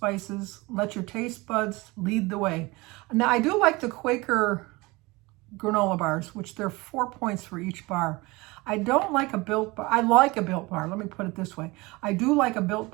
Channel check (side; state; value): left; quieter; 23.3 dB